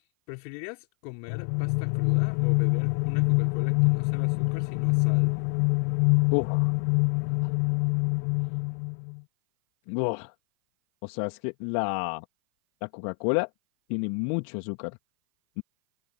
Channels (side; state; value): right; silent; 56 dB below the other